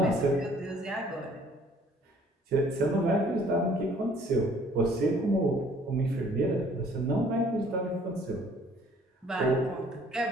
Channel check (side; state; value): both; normal; correlation 0.57